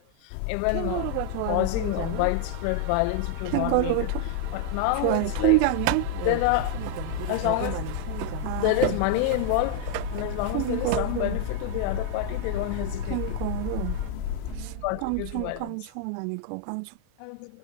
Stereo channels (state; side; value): different; both; correlation 0.00